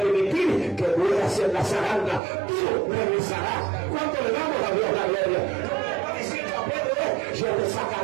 que mueras en la zaranda. Tú regresarás. ¿Cuánto le damos a Dios la gloria? Lo que le está diciendo a Pedro es: yo te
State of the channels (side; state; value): left; drops out; at 2.2 s